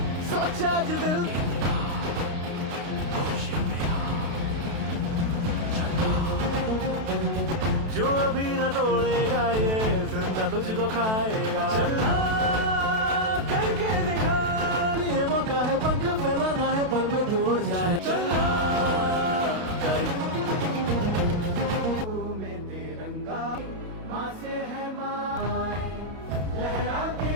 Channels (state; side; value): late; left; 32 ms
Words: सोचा जो दिल जो अभी न तोड़ेगा ये जिंदा तुझको खाएगा चलना करके दिखा ये मौका है पंख फैलाना है पल में दूर जाए चलना में तिरंगा माँ से है माँ लहरा के